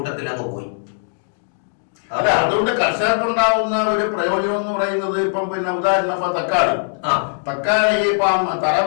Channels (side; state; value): right; silent; digital silence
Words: അങ്ങ് പോയി. അല്ല, അതുകൊണ്ട് കർഷകർക്കുണ്ടാവുന്ന ഒരു പ്രയോജനം എന്ന് പറയുന്നത് ഇപ്പം പിന്നെ ഉദാഹരണം തക്കാളി ഇപ്പം